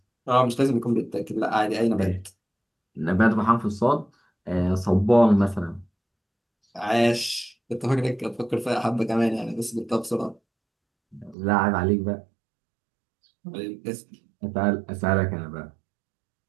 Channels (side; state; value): left; drops out; at 11.4 s